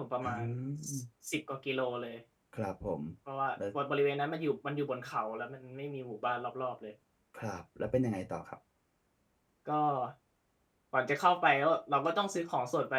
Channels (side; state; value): both; identical; correlation 1.00